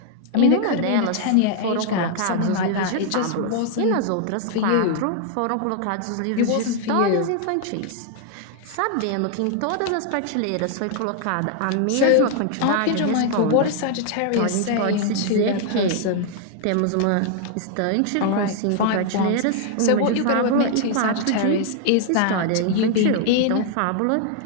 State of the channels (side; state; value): both; different; correlation 0.00